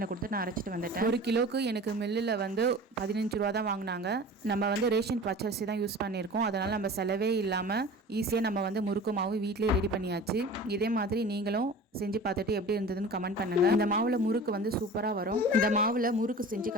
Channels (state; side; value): normal; both; correlation 0.39